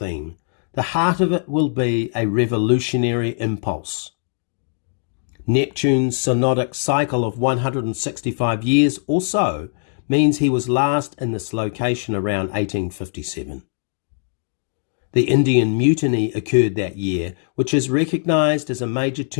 the heart of it will be a revolutionary impulse. Neptune's synodic cycle of 165 years or so means he was last in this location around 1857. The Indian Mutiny occurred that year, which is recognised as a major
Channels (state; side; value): silent; right; digital silence